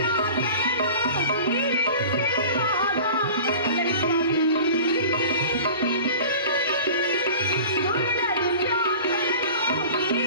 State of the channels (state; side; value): inverted; both; correlation -0.40